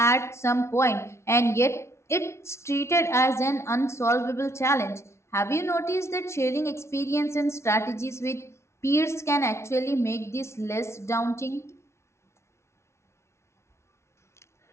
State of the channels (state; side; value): late; right; 0.13 ms